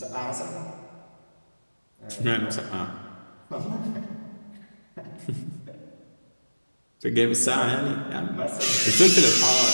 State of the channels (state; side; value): inverted; both; correlation -1.00